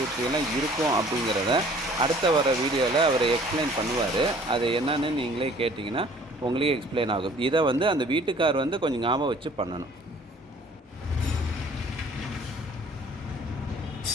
இருக்கும் அப்படிங்கிறத அடுத்த வர வீடியோவில் அவர் எக்ஸ்பிளைன் பண்ணுவார். அது என்னன்னு நீங்களே கேட்டிங்கன்னா உங்களுக்கே எக்ஸ்பிளைன் ஆகும். இதை வந்து அந்த வீட்டுக்கார் வந்து கொஞ்சம் ஞாபகம் வச்சு பண்ணணும்.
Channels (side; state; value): both; normal; correlation 0.53